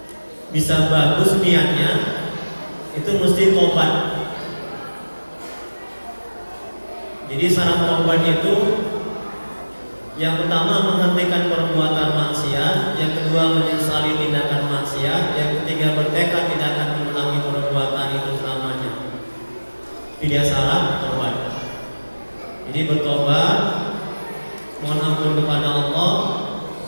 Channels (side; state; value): both; inverted; correlation -1.00